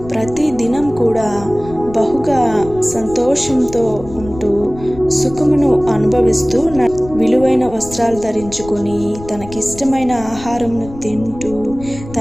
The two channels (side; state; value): left; noise; rumble, 15 dB below the sound